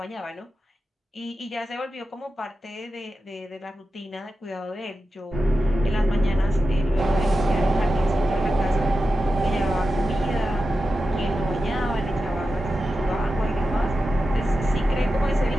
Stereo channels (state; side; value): normal; both; correlation 0.92